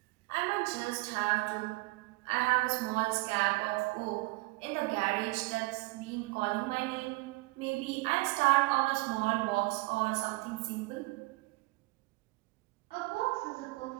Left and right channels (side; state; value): left; quieter; 23.5 dB